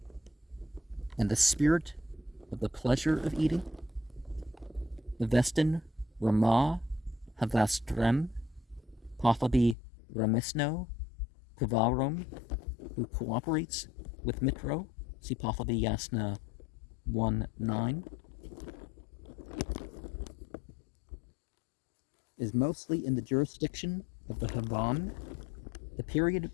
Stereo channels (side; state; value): right; drops out; at 9.8 s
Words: And the spirit of the pleasure of eating. Vestin Ramah Havastrem Pahlavi Ramisno Kavarum, who cooperates with Mitro. See Pahlavi Yasna 1:9. Is mostly in the jurisdiction of the Havan, the period